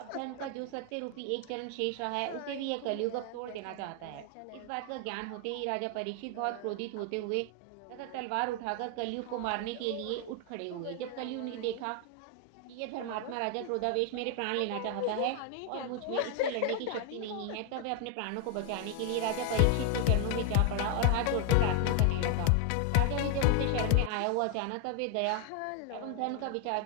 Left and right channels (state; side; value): different; both; correlation 0.00